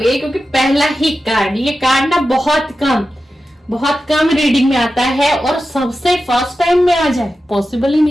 क्योंकि पहला ही कार्ड, ये कार्ड ना बहुत कम बहुत कम रीडिंग में आता है और सबसे फर्स्ट टाइम में आ जाए, पॉसिबल ही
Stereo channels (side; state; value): both; normal; correlation 0.92